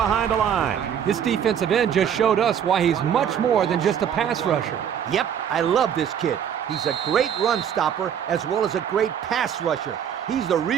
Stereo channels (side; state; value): left; quieter; 8.7 dB